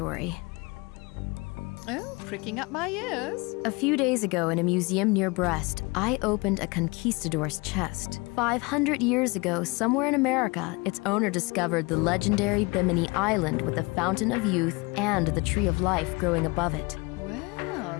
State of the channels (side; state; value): right; quieter; 26.3 dB